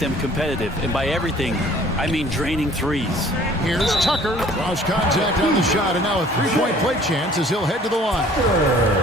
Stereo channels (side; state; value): both; normal; correlation 0.53